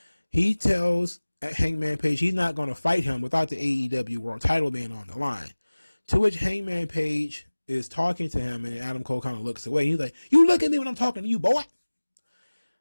He tells Hangman Page he's not going to fight him without the AEW World title being on the line. To which Hangman Page is talking to him, and Adam Cole kind of looks away. He's like, you look at me when I'm talking to you, boy.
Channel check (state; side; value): inverted; both; correlation -1.00